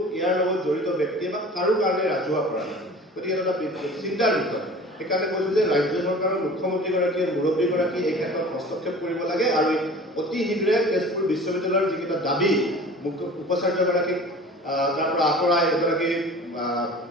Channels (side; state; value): both; normal; correlation 0.42